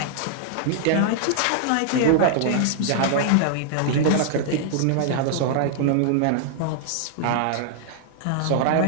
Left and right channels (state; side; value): different; both; correlation -0.01